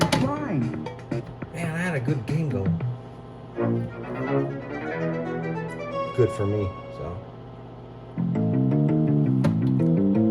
fine. Man, I had a good game going. Good for me, so.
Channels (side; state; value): both; identical; correlation 1.00